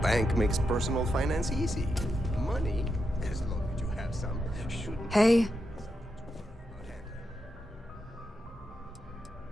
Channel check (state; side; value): normal; both; correlation 0.85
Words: Bank makes personal finance easy. Money, as long as you have some, shouldn't... Hey.